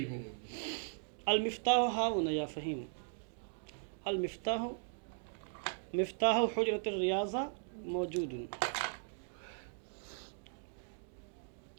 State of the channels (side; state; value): left; silent; digital silence